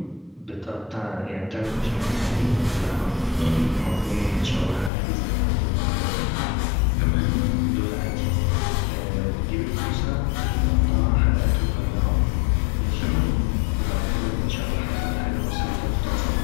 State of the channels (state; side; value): drops out; right; at 4.9 s